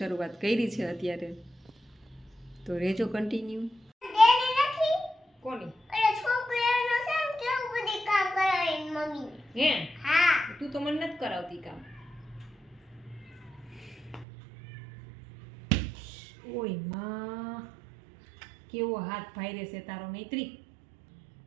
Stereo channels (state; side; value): drops out; left; at 14.2 s